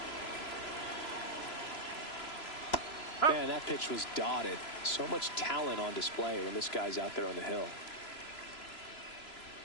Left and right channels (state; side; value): late; right; 3.0 ms